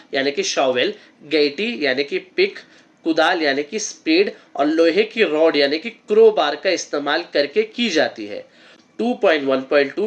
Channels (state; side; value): identical; both; correlation 1.00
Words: यानी कि शॉवेल, गैटी यानी कि पिक, कुदाल यानी कि स्पेड और लोहे की रॉड यानी कि क्रोबार का इस्तेमाल करके की जाती है।